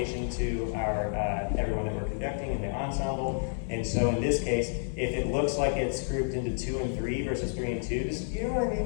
to our everyone that we're conducting in the ensemble. And so in this case, if it looks like it's grouped into 2 and 3 versus 3 and 2, you know what I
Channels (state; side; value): silent; right; digital silence